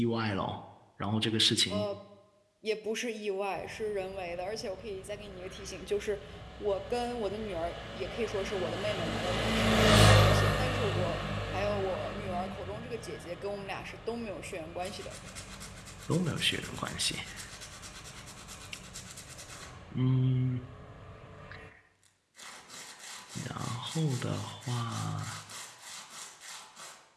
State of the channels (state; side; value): identical; both; correlation 1.00